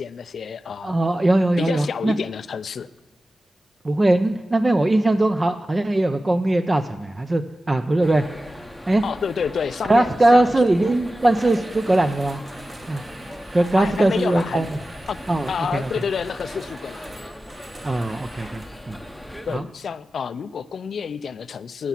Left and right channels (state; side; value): normal; both; correlation 0.94